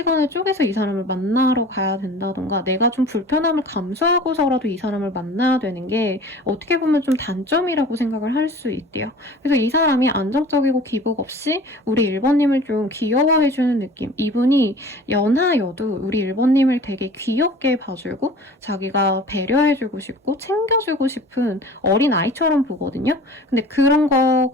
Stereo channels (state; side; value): normal; both; correlation 0.43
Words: 쪼개서 이 사람을 만나러 가야 된다던가 내가 좀 불편함을 감수하고서라도 이 사람을 만나야 되는 게 어떻게 보면 좀 단점이라고 생각을 할 수 있대요. 그래서 이 사람이 안정적이고 기복 없이 우리 1번님을 좀 귀여워해주는 느낌. 이분이 연하여도 우리 1번님을 되게 귀엽게 봐주고 자기가 배려해주고 싶고 챙겨주고 싶은 어린 아이처럼 보거든요. 근데 그런